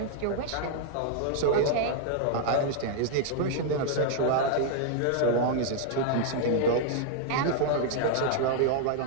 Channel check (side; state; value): both; different; correlation -0.01